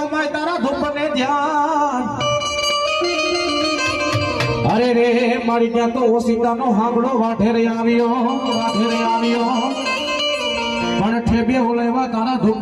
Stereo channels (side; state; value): both; identical; correlation 1.00